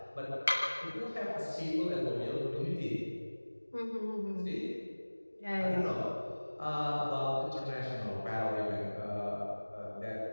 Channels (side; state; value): both; inverted; correlation -1.00